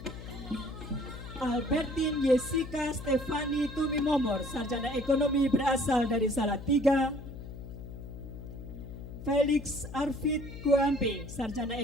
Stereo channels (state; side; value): noise; left; hum, 11 dB below the sound